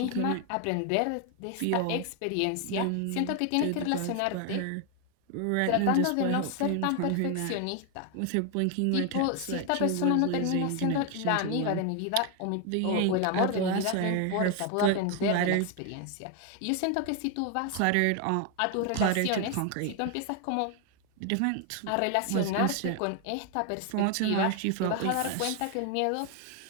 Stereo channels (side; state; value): both; different; correlation 0.01